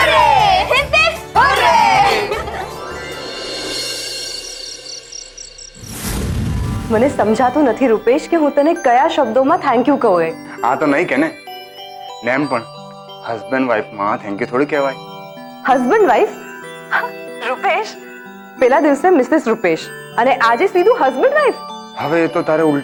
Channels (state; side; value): identical; both; correlation 1.00